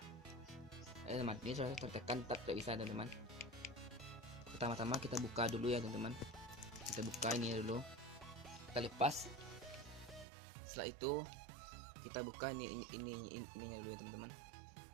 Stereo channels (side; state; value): left; drops out; at 10.2 s